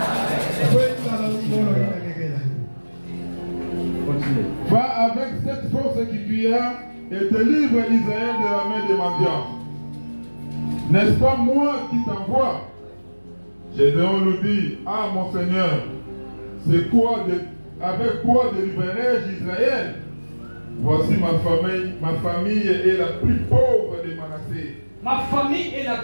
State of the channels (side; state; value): both; inverted; correlation -1.00